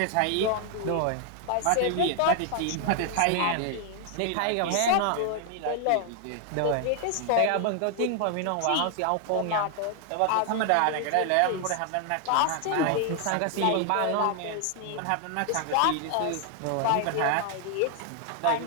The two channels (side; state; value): both; different; correlation 0.00